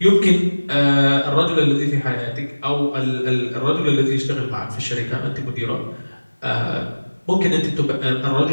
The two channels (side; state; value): both; inverted; correlation -1.00